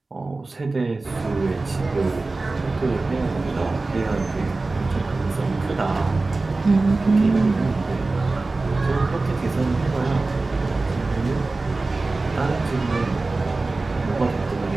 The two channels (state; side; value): quieter; left; 3.4 dB